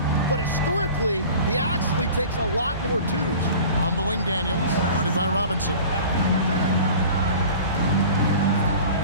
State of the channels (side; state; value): both; inverted; correlation -0.41